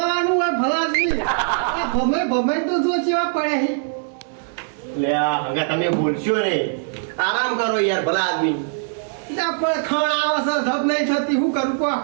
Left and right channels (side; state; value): left; silent; digital silence